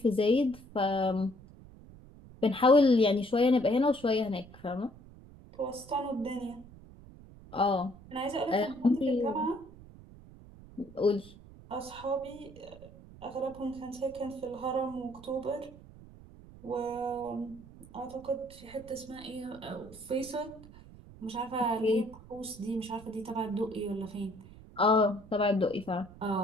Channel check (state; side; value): noise; right; rumble, 19 dB below the sound